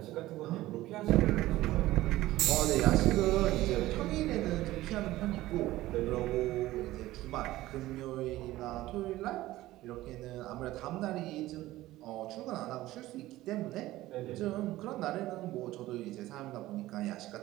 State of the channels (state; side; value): quieter; left; 16.6 dB